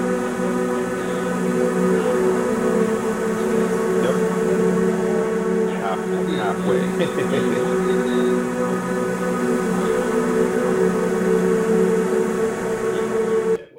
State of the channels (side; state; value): both; identical; correlation 1.00